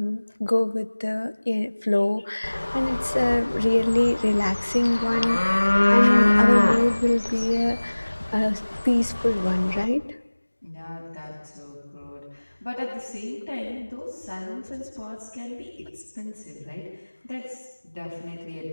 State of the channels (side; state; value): both; inverted; correlation -1.00